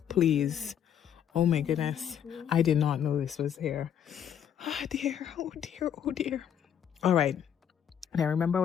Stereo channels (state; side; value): quieter; right; 9.1 dB